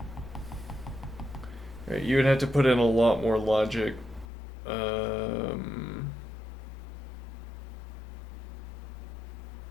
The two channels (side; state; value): right; drops out; at 4.2 s